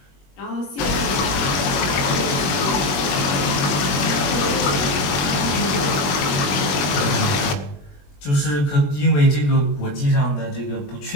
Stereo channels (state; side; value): late; right; 21 ms